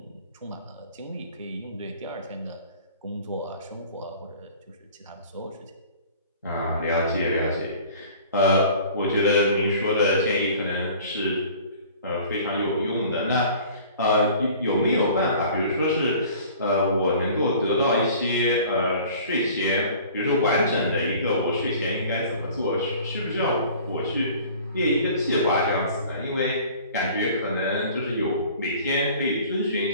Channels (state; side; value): inverted; both; correlation -0.47